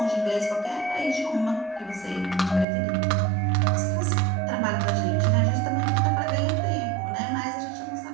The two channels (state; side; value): drops out; left; at 2.7 s